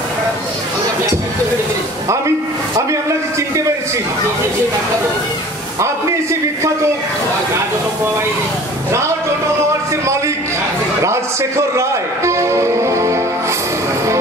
আমি আপনাকে চিনতে পেরেছি। আপনি সে বিখ্যাত রাজ অটোমোবাইলসের মালিক রাজশেখর রায়।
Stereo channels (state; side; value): normal; both; correlation 0.46